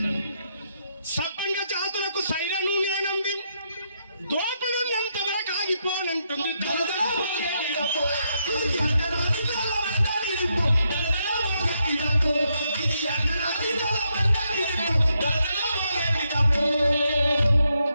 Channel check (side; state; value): both; inverted; correlation -0.79